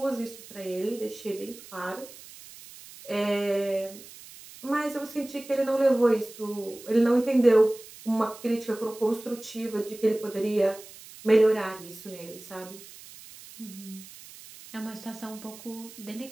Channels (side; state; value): right; noise; hiss, 18 dB below the sound